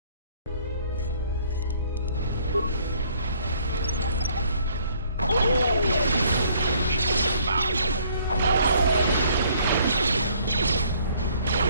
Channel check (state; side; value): inverted; both; correlation -0.62